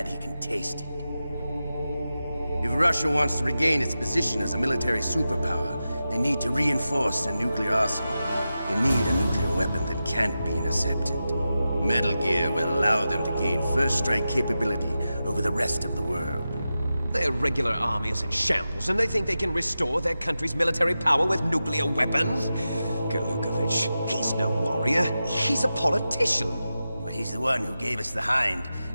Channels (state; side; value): inverted; both; correlation -0.92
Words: he can taste it. If Russia wants to regain its position as a military superpower, they need to reinforce their nuclear arsenal. They need a nuclear weapon that can't be intercepted. Metal Gear will allow them to gain first strike capability over the rest of the world. Their regular army is in shambles, and they think they can restore their country's military power with nuclear weapons? Golukovich, he's no warrior. He's a politician. But he's the one who gave us the Hind